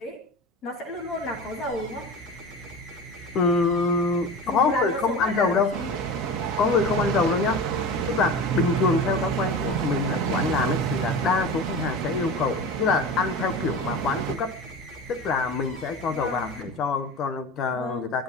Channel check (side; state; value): both; normal; correlation 0.31